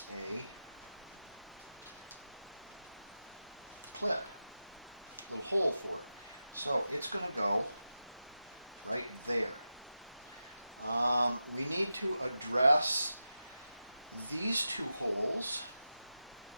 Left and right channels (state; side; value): inverted; both; correlation -0.91